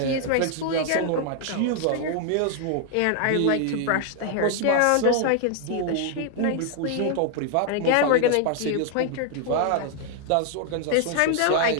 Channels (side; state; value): both; different; correlation 0.00